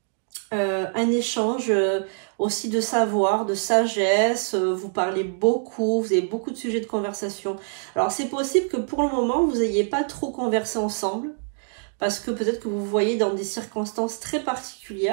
un échange aussi de savoir, de sagesse, vous parlez beaucoup, vous avez beaucoup de sujets de conversation. Alors c'est possible que pour le moment, vous n'ayez pas trop conversé ensemble, parce que peut-être que vous vous voyez dans des circonstances très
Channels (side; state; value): left; silent; digital silence